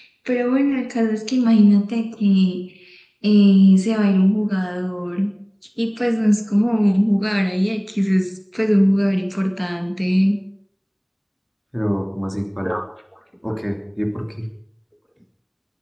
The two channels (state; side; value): identical; both; correlation 1.00